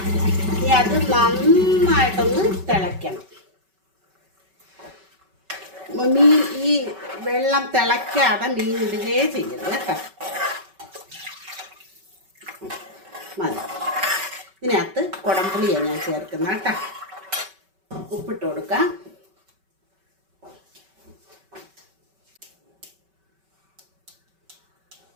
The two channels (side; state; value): left; late; 5.2 ms